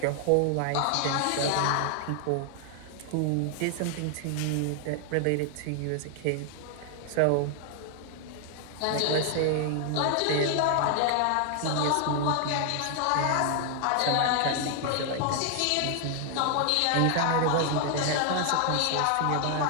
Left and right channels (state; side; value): different; both; correlation 0.00